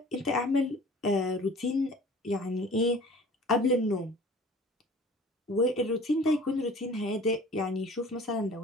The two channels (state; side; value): normal; both; correlation 0.46